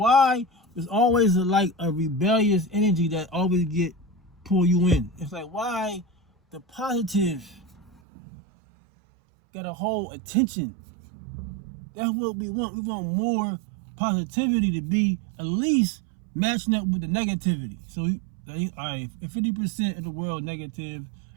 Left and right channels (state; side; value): drops out; left; at 8.0 s